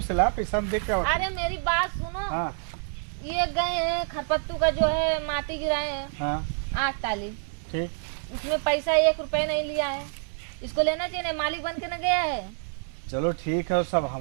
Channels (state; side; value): silent; left; 58 dB below the other